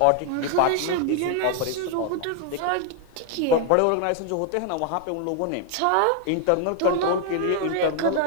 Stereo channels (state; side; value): different; both; correlation 0.00